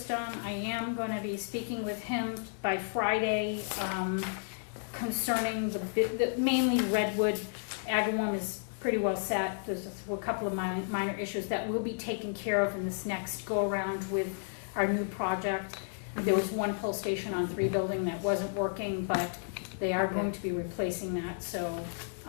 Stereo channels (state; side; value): silent; right; digital silence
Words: I am gonna be speaking with him by Friday, concerning the mainly Redwood Agawam is pretty well set. There's a couple of minor issues that will be taken care of in this next go-around with our new project. There was one pull station on 3 building that wasn't working, but they are going to be replacing that, so,